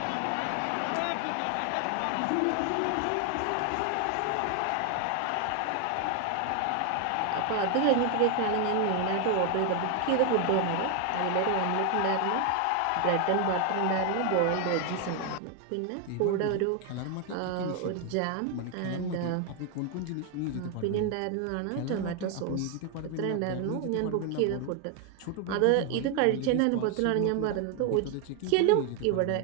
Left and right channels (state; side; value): different; both; correlation 0.01